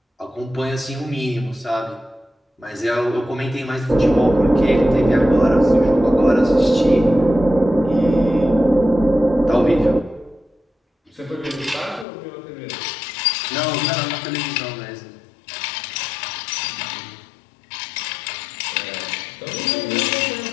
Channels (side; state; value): right; drops out; at 12.1 s